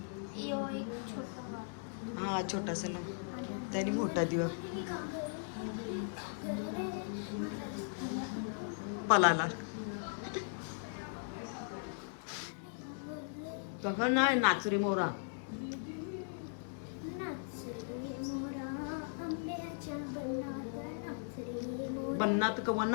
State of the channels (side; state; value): right; silent; digital silence